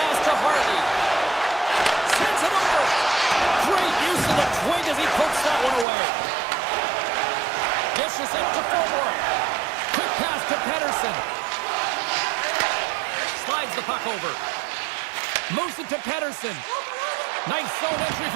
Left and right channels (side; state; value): left; drops out; at 5.9 s